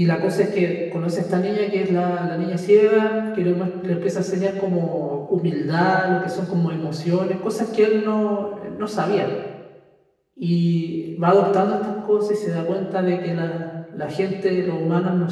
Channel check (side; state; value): both; identical; correlation 1.00